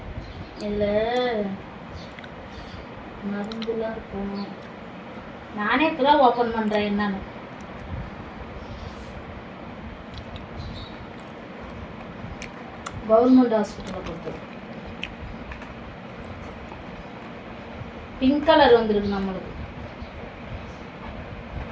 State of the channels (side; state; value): both; identical; correlation 1.00